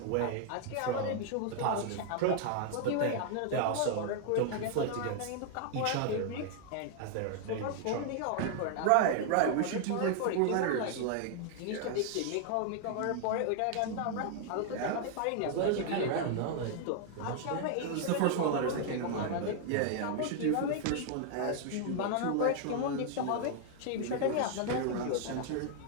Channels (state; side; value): different; both; correlation 0.00